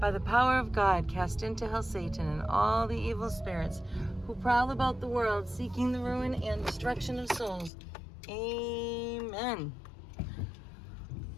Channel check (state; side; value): drops out; right; at 7.7 s